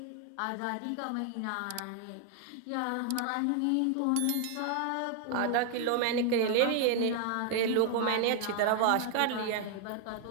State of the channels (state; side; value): different; both; correlation 0.00